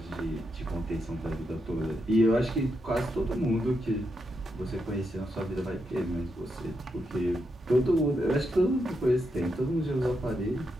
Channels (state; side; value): normal; both; correlation 0.83